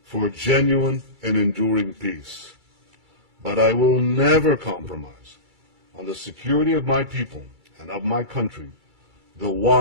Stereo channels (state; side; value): late; left; 2.3 ms